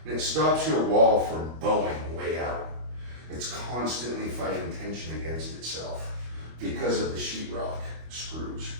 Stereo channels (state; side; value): late; left; 25 ms